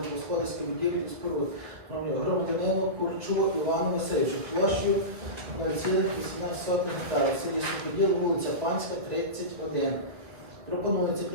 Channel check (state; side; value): late; left; 1.8 ms